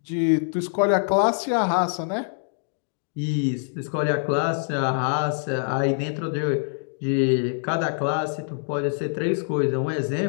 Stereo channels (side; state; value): right; silent; digital silence